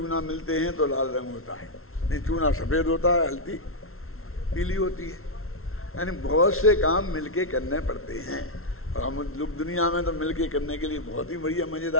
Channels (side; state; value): right; late; 0.62 ms